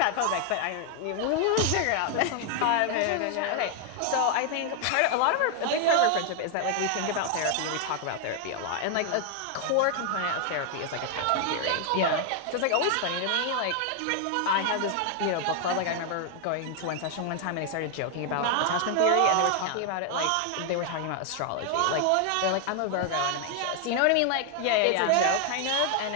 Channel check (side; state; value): both; different; correlation 0.00